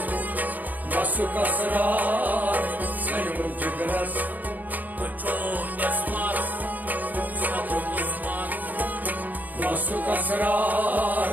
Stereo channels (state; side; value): late; left; 0.082 ms